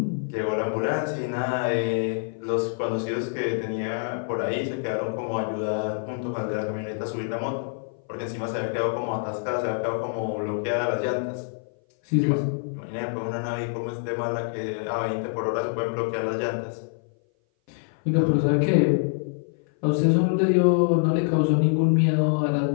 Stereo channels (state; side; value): silent; right; 57 dB below the other